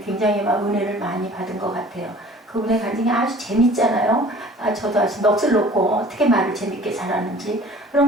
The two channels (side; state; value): both; normal; correlation 0.48